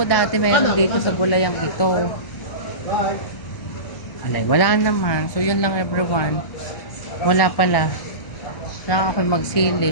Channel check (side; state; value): right; late; 1.2 ms